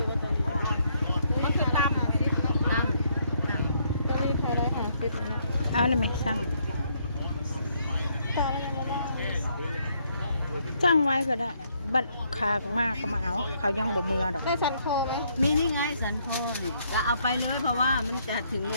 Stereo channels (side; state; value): both; inverted; correlation -0.71